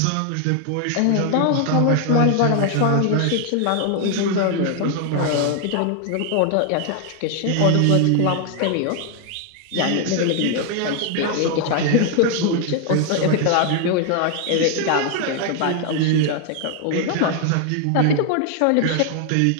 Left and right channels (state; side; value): different; both; correlation 0.00